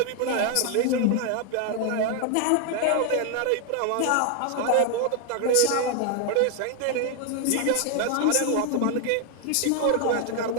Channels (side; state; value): both; different; correlation 0.00